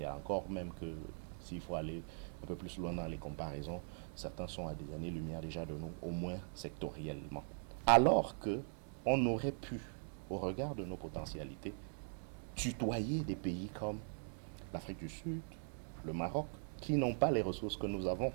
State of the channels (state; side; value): silent; left; digital silence